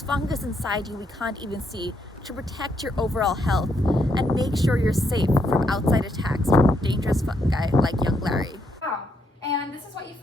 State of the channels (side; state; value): both; normal; correlation 0.76